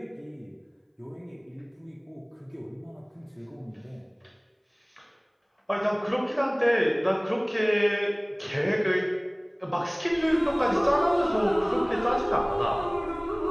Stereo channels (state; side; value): identical; both; correlation 1.00